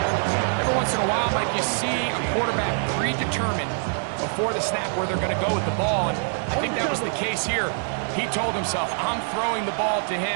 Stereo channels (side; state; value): left; silent; 62 dB below the other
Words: Every once in a while, Mike, you see a quarterback predetermined before the snap where they're going to go with the ball, and I think that was the case here. He told himself, I'm throwing the ball to